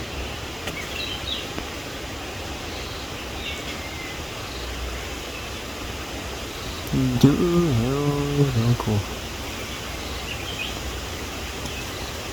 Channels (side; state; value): right; noise; hiss, 20 dB below the sound